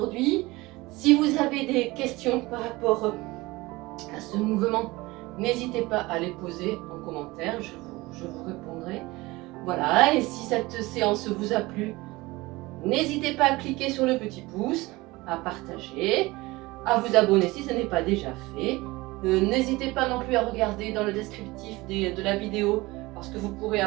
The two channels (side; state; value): left; quieter; 21.2 dB